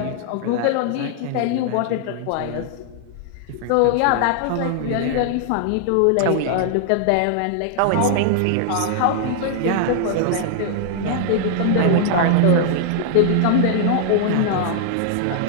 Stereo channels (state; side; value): different; both; correlation -0.01